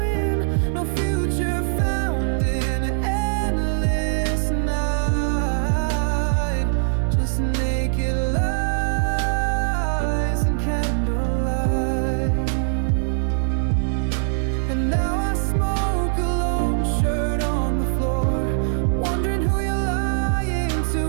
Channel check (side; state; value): left; silent; 64 dB below the other